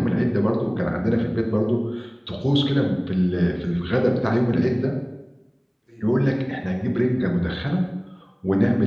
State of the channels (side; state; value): both; identical; correlation 1.00